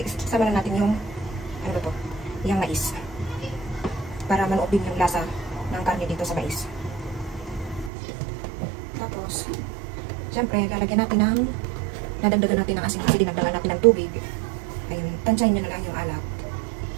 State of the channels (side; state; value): left; drops out; at 7.9 s